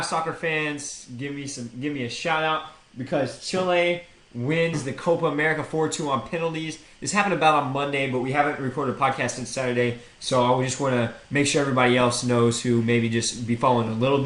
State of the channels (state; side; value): identical; both; correlation 1.00